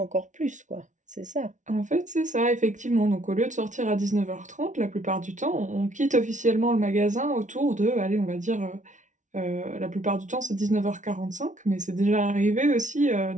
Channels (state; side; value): late; left; 0.37 ms